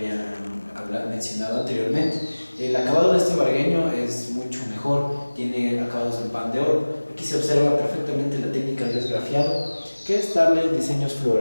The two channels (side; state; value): both; inverted; correlation -1.00